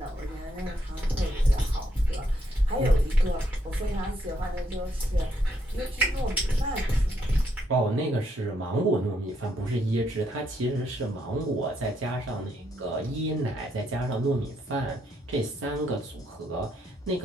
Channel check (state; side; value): normal; both; correlation 0.75